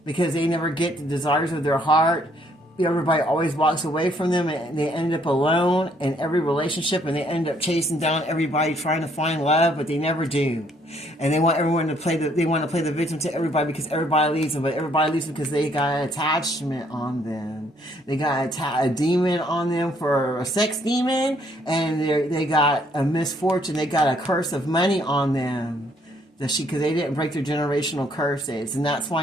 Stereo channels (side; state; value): both; normal; correlation 0.67